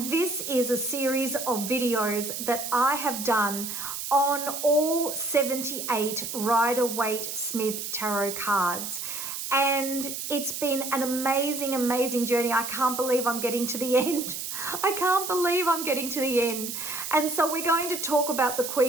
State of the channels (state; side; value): noise; right; hiss, 6 dB below the sound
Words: this is a series of videos that I have done on all 78 Rider-Waite-Smith tarot cards. And it's been an amazing, amazing journey. I can't believe I'm getting to the end. I can't believe I'm getting to the end. And so we're going to talk about the